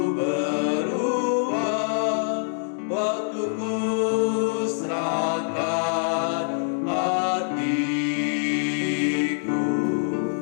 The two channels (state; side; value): silent; right; digital silence